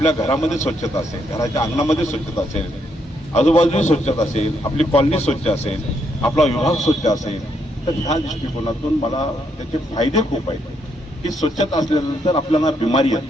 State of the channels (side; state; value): both; normal; correlation 0.75